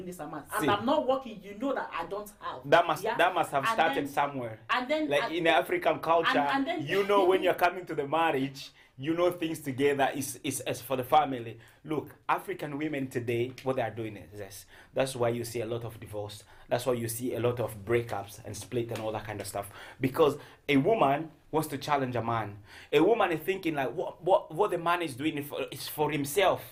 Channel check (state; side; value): identical; both; correlation 1.00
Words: this amount, and I'm not working. You know that I don't have. That must have started somewhere. And then, like in the African culture, and then, you know, when you're coming to the marriage, you know things together is as for the family. Look, African women today, what they are doing is this. That's why you see a lot of divorce. That's why you see a lot of breakups and split and all that kind of stuff. Because a woman wants to challenge a man. A woman is thinking like, what the man is doing is for